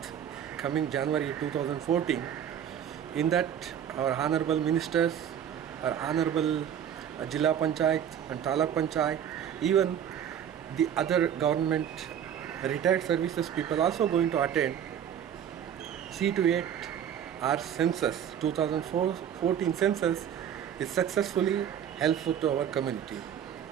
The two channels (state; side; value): quieter; left; 9.3 dB